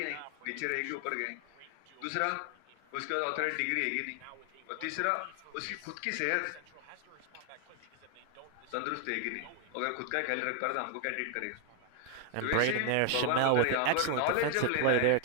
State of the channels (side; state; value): both; different; correlation 0.01